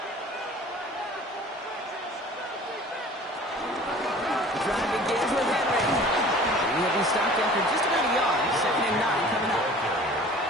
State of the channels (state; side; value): normal; both; correlation 0.46